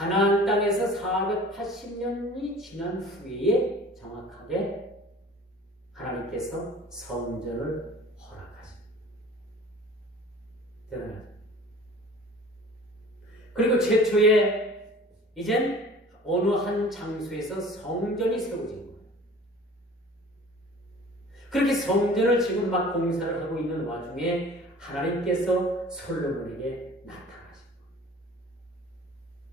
땅에서 480년이 지난 후에 정확하게 하나님께서 성전을 허락하십니다. 대단하죠. 그리고 최초에 이젠 어느 한 장소에서 성전이 세워진 거예요. 그렇게 성전을 지금 막 공사를 하고 있는 와중에 하나님께서 솔로몬에게 나타나신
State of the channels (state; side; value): normal; both; correlation 0.45